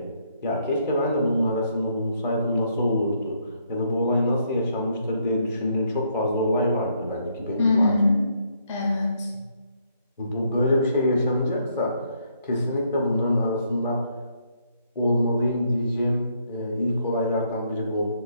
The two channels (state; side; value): inverted; both; correlation -0.72